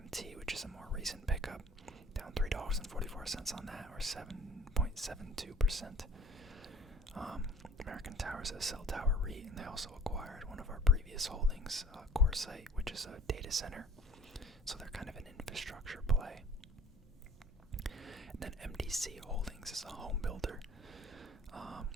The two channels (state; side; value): normal; both; correlation 0.48